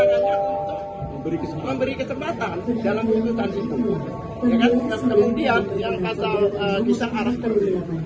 untuk memberi kesempatan dalam putusan itu. Ya kan? Kemudian yang pasal kita arahkan,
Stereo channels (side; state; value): both; identical; correlation 1.00